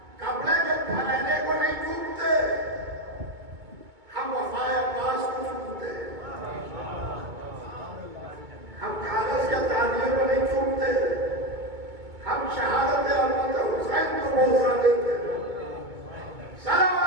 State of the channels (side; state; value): left; late; 2.2 ms